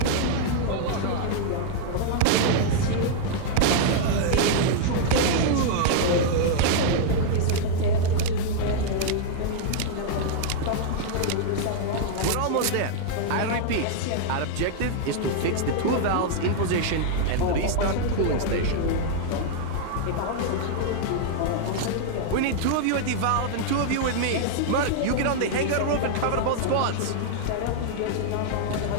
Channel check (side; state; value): both; different; correlation -0.01